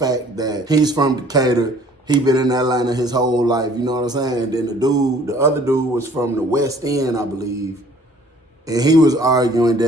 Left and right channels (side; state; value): both; normal; correlation 0.55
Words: that he's from Decatur. He been in Atlanta his whole life, you know what I'm saying? And then the other dude was from the West End, I believe. And he was arguing